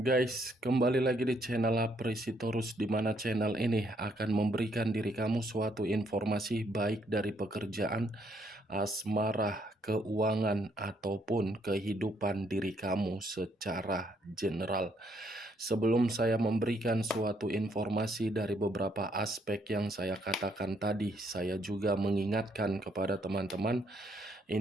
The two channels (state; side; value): normal; both; correlation 0.71